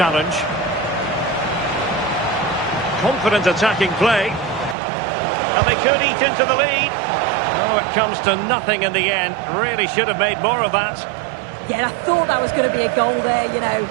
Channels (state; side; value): drops out; left; at 4.8 s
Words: Confident attacking play. And they could eat into the lead. Oh, it comes to nothing in the end. Really should have made more of that. Yeah, I thought that was going to be a goal there, you know.